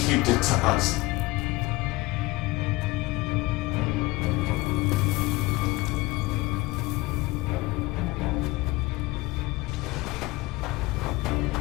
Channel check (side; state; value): right; quieter; 21.0 dB